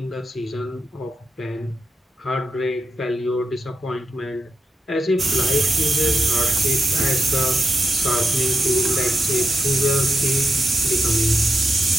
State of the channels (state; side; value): normal; both; correlation 0.87